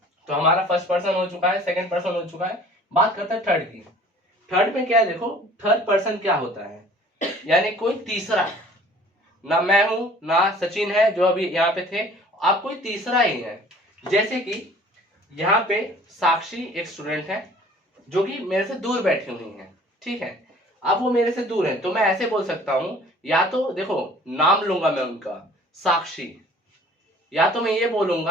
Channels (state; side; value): normal; both; correlation 0.50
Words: तो हमारा फर्स्ट पर्सन हो चुका है, सेकंड पर्सन हो चुका है। बात करते हैं थर्ड की। थर्ड में क्या है, देखो थर्ड पर्सन क्या होता है, यानी कोई तीसरा, ना मैं हूं ना सचिन है जो अभी यहाँ पे थे, आप कोई तीसरा ही है। जैसे कि यहाँ पे साक्षी एक स्टूडेंट है जो कि मेरे से दूर बैठी हुई है, ठीक है। अब वो मेरे से दूर है तो मैं ऐसे बोल सकता हूं, या तो देखो नाम लूंगा मैं उनका साक्षी, या तो मैं ये